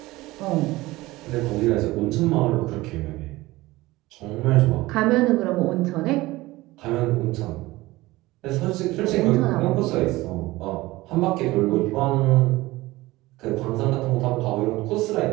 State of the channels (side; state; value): left; quieter; 19.3 dB